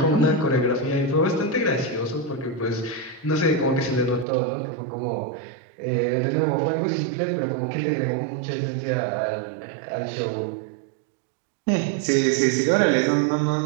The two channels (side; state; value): left; drops out; at 4.2 s